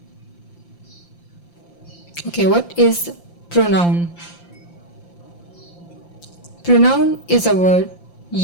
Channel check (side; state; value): right; late; 5.8 ms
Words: Okay, what is pronoun? Pronoun is a word